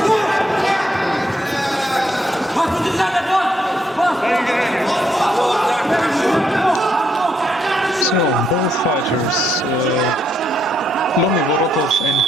Both fighters, Vorotov and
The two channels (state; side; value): normal; both; correlation 0.75